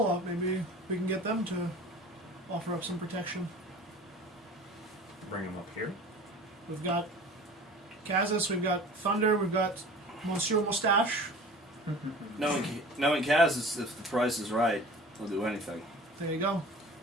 we can get them to offer up some protection. Bring them up here. We've got Kazas, we've got Thunder, we've got Monsieur Moustache. Knowing Kaz, if the price is right, he'll do anything. There you go.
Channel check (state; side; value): normal; both; correlation 0.41